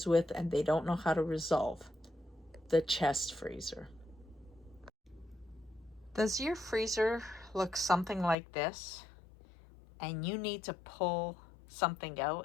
with and they don't know how to resolve: the chest freezer. Does your freezer look something like this, and you need to pull something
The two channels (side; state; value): right; drops out; at 8.3 s